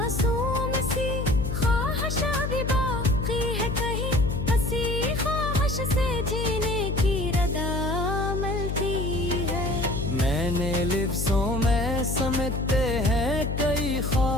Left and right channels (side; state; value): left; noise; hum, 2 dB below the sound